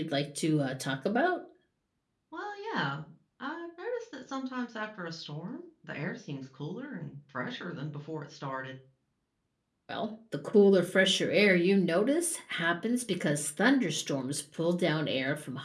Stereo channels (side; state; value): both; identical; correlation 1.00